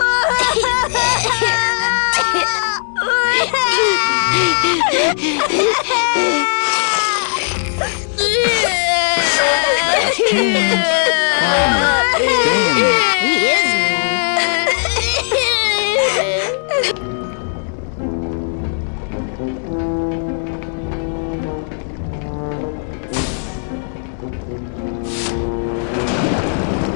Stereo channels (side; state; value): right; silent; digital silence